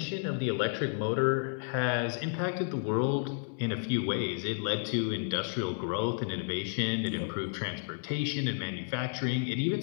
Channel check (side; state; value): right; silent; 57 dB below the other